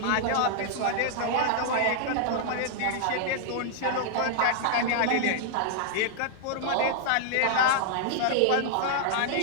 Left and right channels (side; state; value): both; different; correlation -0.01